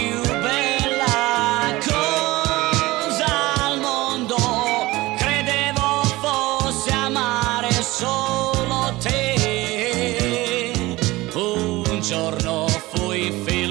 bella cosa al mondo credevo fosse amare solo te. Un giorno fui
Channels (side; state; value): left; quieter; 19.6 dB